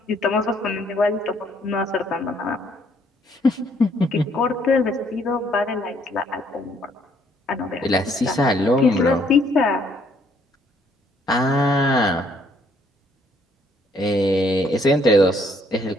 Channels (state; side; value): normal; both; correlation 0.66